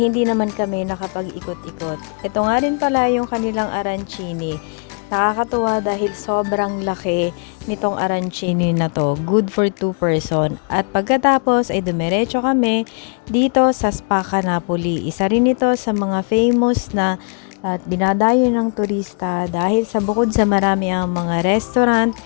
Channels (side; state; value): right; quieter; 37.8 dB